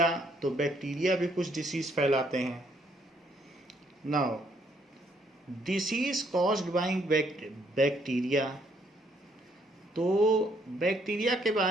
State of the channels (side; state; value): both; normal; correlation 0.69